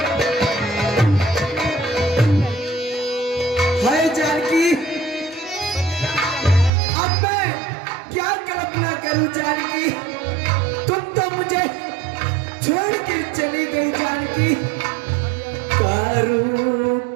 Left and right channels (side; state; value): left; drops out; at 6.7 s